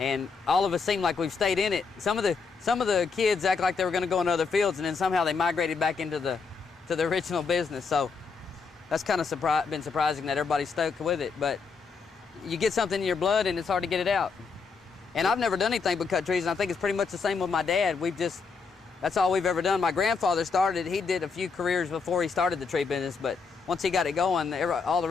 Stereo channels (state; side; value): quieter; right; 5.0 dB